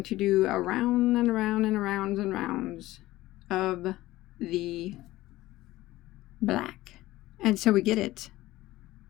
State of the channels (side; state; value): right; quieter; 17.1 dB